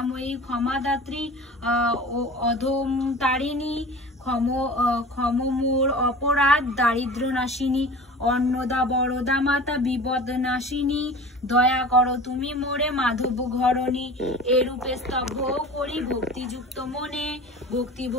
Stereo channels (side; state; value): both; normal; correlation 0.38